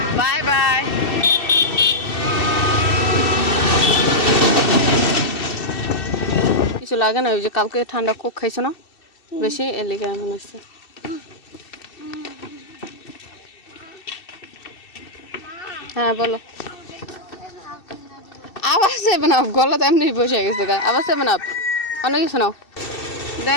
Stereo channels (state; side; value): late; right; 2.7 ms